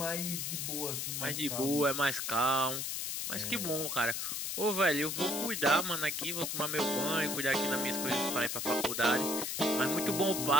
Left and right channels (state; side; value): noise; left; hiss, 2 dB below the sound